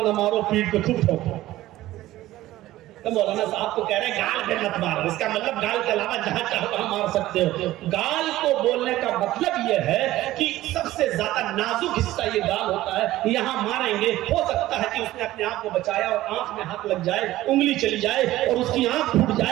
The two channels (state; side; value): quieter; left; 15.7 dB